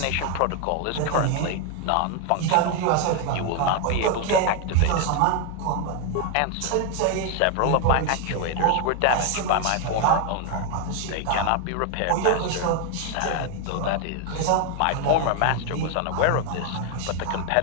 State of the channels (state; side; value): different; both; correlation 0.01